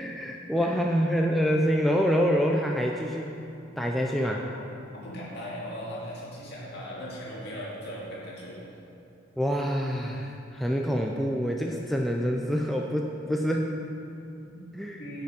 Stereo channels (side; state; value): both; normal; correlation 0.80